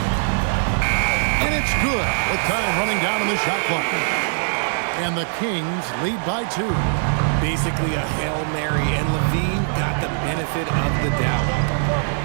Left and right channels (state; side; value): silent; left; 60 dB below the other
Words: And it's good with time running down on the shot clock. And the Kings lead by 2. Basically a Hail Mary, and Levine got the benefit of the doubt.